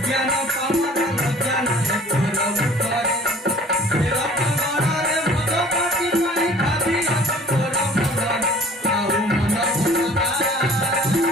ପାମର ଲଜ୍ଜା ନାହିଁ ତୋର ମୁଖରେ। ତେର ପଗଡ଼ରେ ମଦ ପାଟି ପାଇଁ ଭାବି ଅଛି ତୋର ମନରେ। ଆଉ ମନ ଭୁଲତା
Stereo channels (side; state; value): both; normal; correlation 0.51